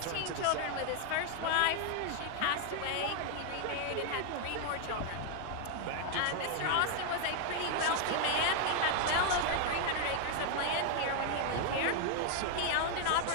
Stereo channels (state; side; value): different; both; correlation 0.00